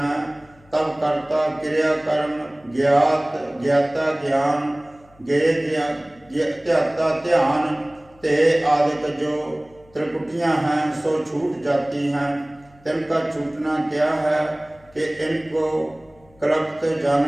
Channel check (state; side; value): noise; left; hum, 28 dB below the sound